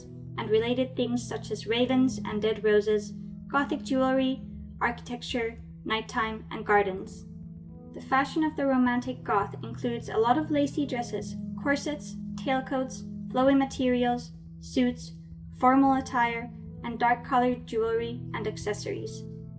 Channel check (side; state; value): both; identical; correlation 1.00